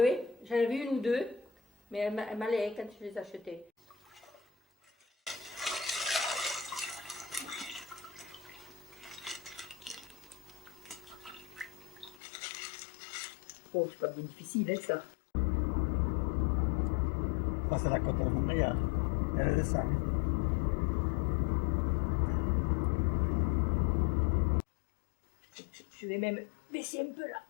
hein. J'en avais une ou deux, mais elles m'allaient quand je les achetais. Oh, c'est pas bien difficile, hein, ça. Ça, c'est la côte de Montréal. Elle descend. Je vais même baisser un peu là.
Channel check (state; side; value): drops out; right; at 12.2 s